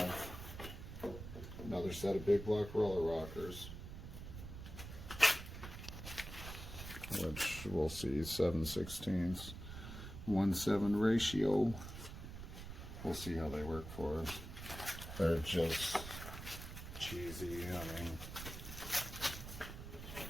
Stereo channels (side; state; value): right; noise; rumble, 10 dB below the sound